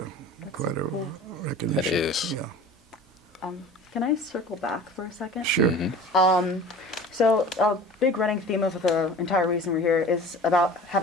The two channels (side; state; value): both; normal; correlation 0.41